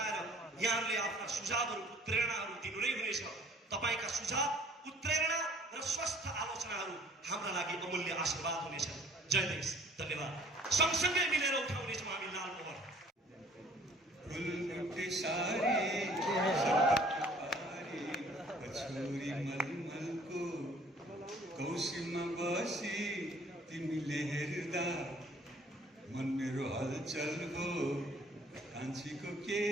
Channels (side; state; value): both; normal; correlation 0.55